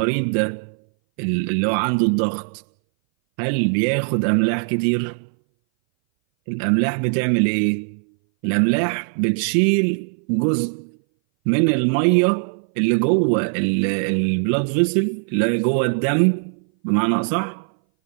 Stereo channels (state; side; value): silent; left; 60 dB below the other